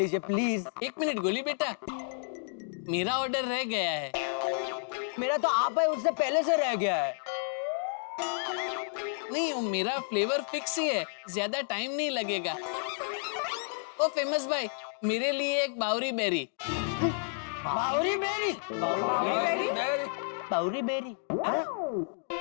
प्लीज। एक मिनट गोली बेटा, मेरा ऑर्डर रह गया है। मेरा तो आप है, उससे पहले से रह गया है। नहीं, वो मेरा फ्लेवर फिक्स ही है, ज्यादा टाइम नहीं लगेगा। ओ फेमस भाई, मेरे लिए एक बावरी बेरी। बावरी बेरी। बावरी बेरी।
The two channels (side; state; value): right; silent; digital silence